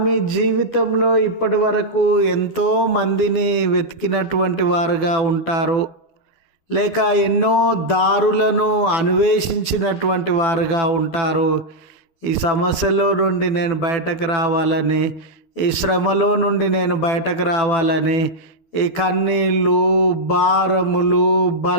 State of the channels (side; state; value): right; late; 12 ms